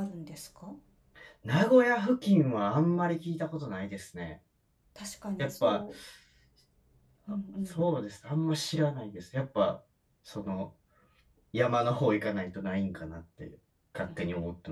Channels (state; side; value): identical; both; correlation 1.00